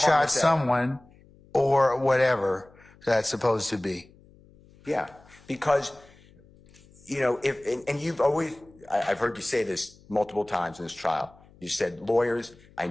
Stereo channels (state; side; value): noise; left; hum, 27 dB below the sound